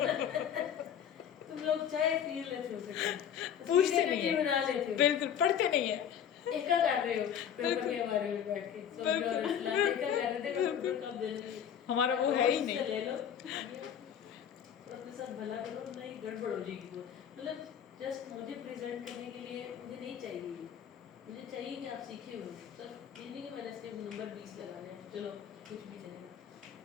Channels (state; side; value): quieter; right; 8.8 dB